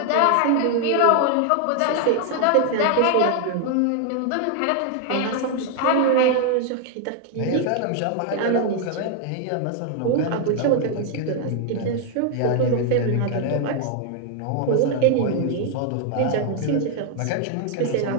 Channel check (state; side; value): different; both; correlation 0.00